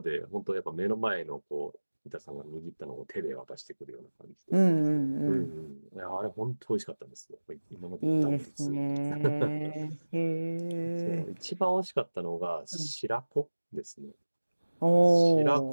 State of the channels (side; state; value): both; inverted; correlation -1.00